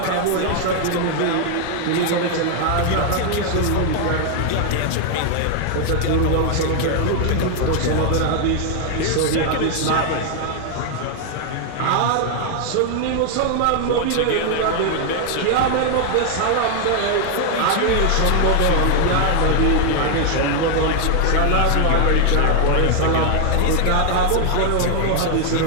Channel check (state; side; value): different; both; correlation 0.00